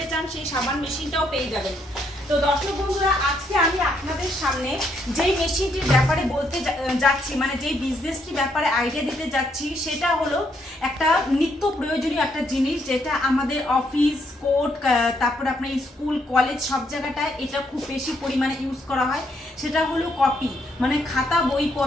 চান সেই সাবান মেশিনটাও পেয়ে যাবেন। তো দর্শক বন্ধুরা আজকে আমি আপনাদের সামনে যেই মেশিনটির ব্যাপারে বলতে যাচ্ছি, মানে যেই বিজনেসটির ব্যাপারে আইডিয়া দিতে যাচ্ছি, সেটা হলো একটা নিত্য প্রয়োজনীয় একটা জিনিস, যেটা আমাদের অফিস, কোর্ট, তারপর আপনার স্কুল, কলেজ সব জায়গাটায় এটা খুব বেশি পরিমাণে ইউজ করা হয়। সেটা হলো কপি, মানে খাতা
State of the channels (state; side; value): normal; both; correlation 0.74